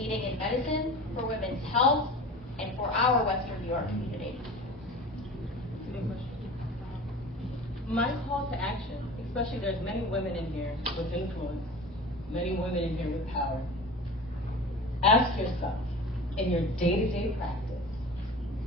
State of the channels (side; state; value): both; normal; correlation 0.36